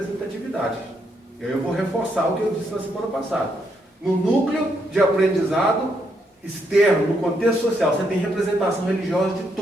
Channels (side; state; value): both; normal; correlation 0.77